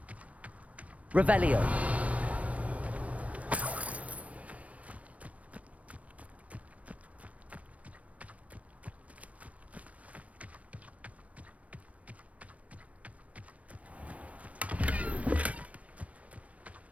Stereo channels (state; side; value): late; left; 0.066 ms